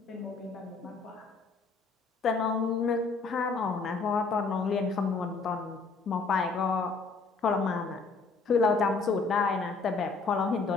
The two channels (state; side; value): quieter; right; 4.3 dB